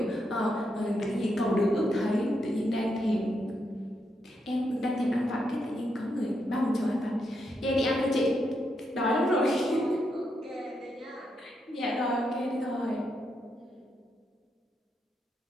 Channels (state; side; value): normal; both; correlation 0.81